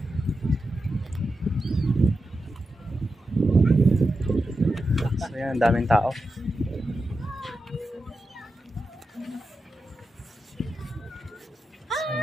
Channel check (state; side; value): normal; both; correlation 0.89